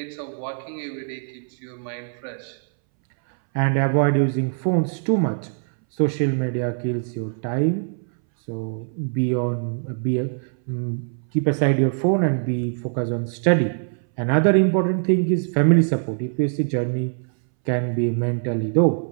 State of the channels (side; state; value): left; silent; 62 dB below the other